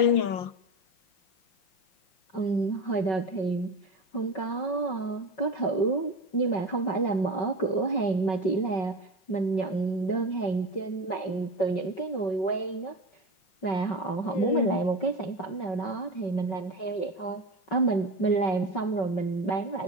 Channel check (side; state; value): right; late; 5.3 ms